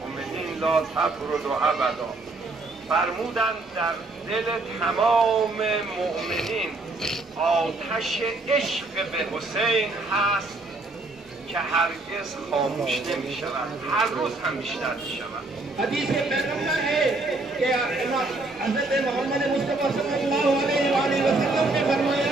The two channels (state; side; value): quieter; left; 3.2 dB